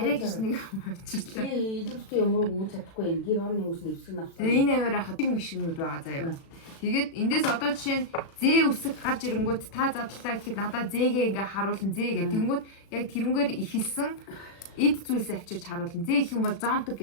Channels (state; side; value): late; right; 36 ms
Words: гэж нэг авчирлаа. Илүүстэй юмруу үүс чадахгүй юм. Гэр орны үүс нэвсгэн авсан. Энэ аваар хатаг машинууд байгаа заяа. Тэгээд эндээс одоо жишээ нь зээ үсэг гарч ирэнгүүт та задлаа гэхэд надад зээгээ ингээ харуулна зээ гэх. Тэнгүүд яг тэрнгээр ихэлсэн эд зүйлс авчирч харуулна. Зээ их юм бол зонтог